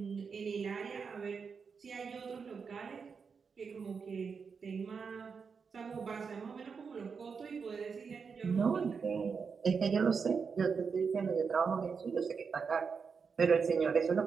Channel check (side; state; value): left; quieter; 5.7 dB